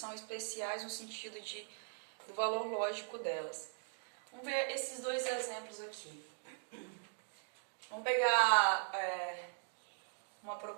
especiais no sentido do valor lógico delas. Vamos ver esses dois exemplos aqui. Vamos pegar uma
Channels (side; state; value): left; silent; digital silence